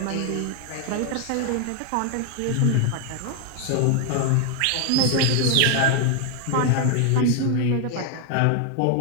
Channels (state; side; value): different; both; correlation 0.00